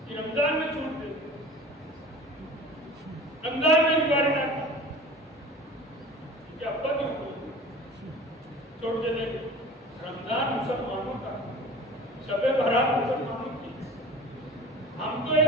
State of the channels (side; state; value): both; normal; correlation 0.41